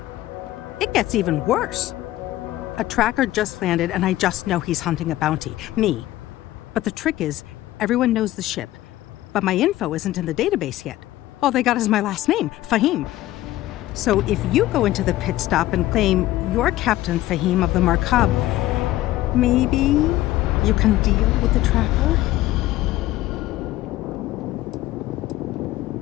It gets even worse. A tracker just landed and I just know he's hunting a bounty. Me. But the trick is, everyone knows the ship. But my info isn't in the database yet. All they got is my last name, Fahim. So if you go into the pit stop and claim you're Captain Fahim of the Markab, maybe you can deal with the tracker?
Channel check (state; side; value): quieter; right; 15.7 dB